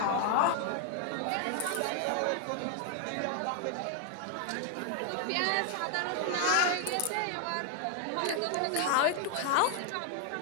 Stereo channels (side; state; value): both; different; correlation 0.00